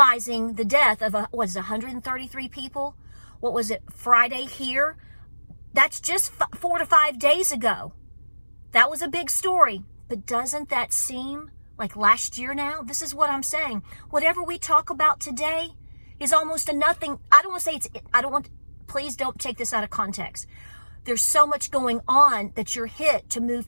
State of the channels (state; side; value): inverted; both; correlation -1.00